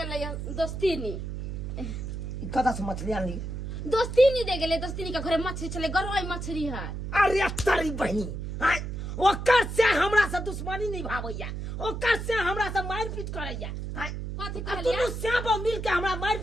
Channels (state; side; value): noise; right; hum, 5 dB below the sound